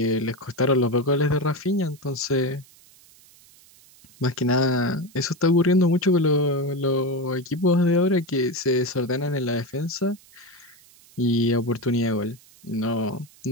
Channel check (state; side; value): noise; right; hiss, 26 dB below the sound